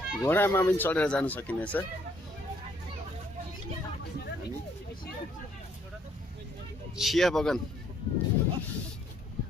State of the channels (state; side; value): normal; both; correlation 0.67